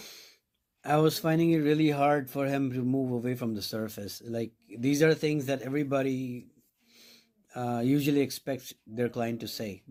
I was finding it really hard for him to move away from the surface. Like, these are things that everybody usually expects their client to say,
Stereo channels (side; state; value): both; identical; correlation 1.00